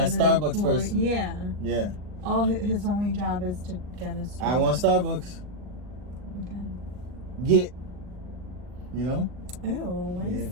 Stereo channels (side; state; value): left; late; 39 ms